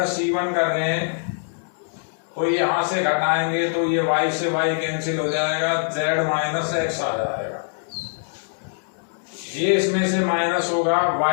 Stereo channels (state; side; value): silent; right; 63 dB below the other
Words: C1 कर रहे हैं, तो यहां से घटाएंगे तो ये y से y कैंसिल हो जाएगा, z माइनस x आ जाएगा, ये इसमें से माइनस होगा,